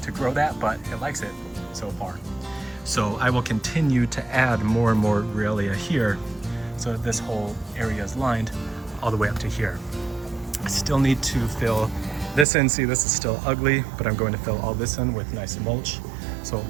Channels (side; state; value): left; drops out; at 12.5 s